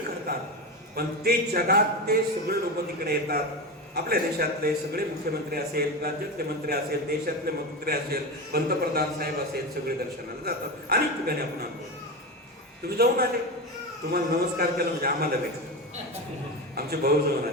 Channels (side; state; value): both; normal; correlation 0.20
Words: करतात, पण ते जगात ते सगळे लोक तिकडे येतात. आपल्या देशातले सगळे मुख्यमंत्री असेल, राज्यातले मंत्री असेल, देशातले मंत्री असेल, पंतप्रधान साहेब असेल, सगळे दर्शनाला जातात. अनेक ठिकाणी आपण आणतो. तुम्ही जाऊन आले, तुम्हाला नमस्कार केला म्हणजे आम्हाला भेटलं. आमचे भाऊ जाऊन